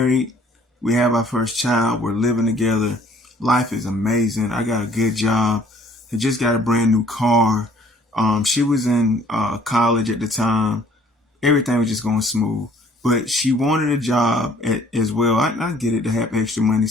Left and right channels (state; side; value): normal; both; correlation 0.58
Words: We have our first child. We're living together. Life is amazing. I got a good job. I just got a brand new car. She was in college at the time. Everything was just going smooth. But she wanted a job as well. I get it, to have extra money.